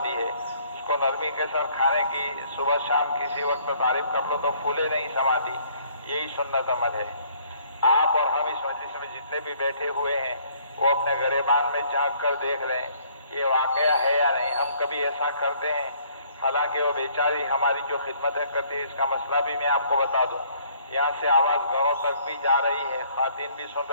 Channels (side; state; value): both; inverted; correlation -0.61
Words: ہے، اس کو نرمی کے ساتھ کھانے کی صبح شام کسی وقت تعریف کر لو تو پھولے نہیں سماتی. یہی سنت عمل ہے. آپ اور ہم اس مجلس میں جتنے بھی بیٹھے ہوئے ہیں وہ اپنے گریبان میں جھانک کر دیکھ لیں یہ واقعہ ہے یا نہیں. ہم کبھی ایسا کرتے ہیں؟ حالانکہ وہ بیچاری ہماری جو خدمتیں کرتی ہے، اس کا مسئلہ بھی میں آپ کو بتا دوں. یہاں سے آواز گھروں تک بھی جا رہی ہے، خواتین بھی سن